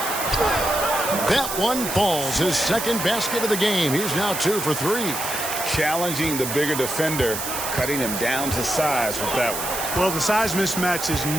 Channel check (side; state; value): right; noise; hiss, 5 dB below the sound